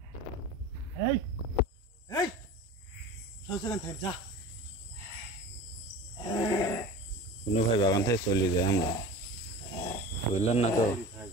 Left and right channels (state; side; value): normal; both; correlation 0.36